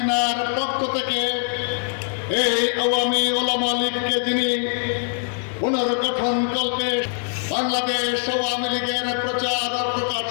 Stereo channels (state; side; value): silent; right; 64 dB below the other